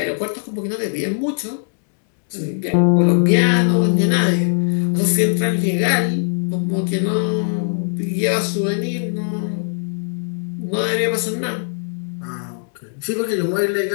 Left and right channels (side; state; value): right; silent; digital silence